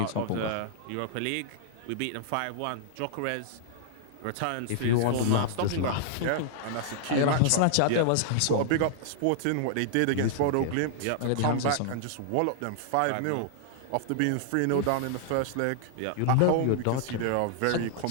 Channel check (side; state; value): both; different; correlation -0.01